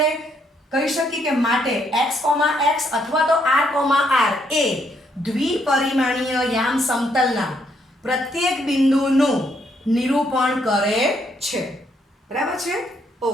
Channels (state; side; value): normal; both; correlation 0.73